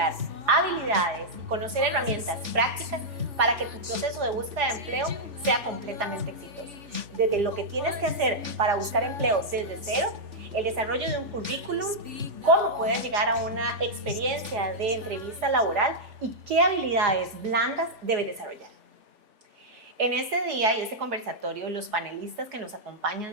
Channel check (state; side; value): late; left; 3.4 ms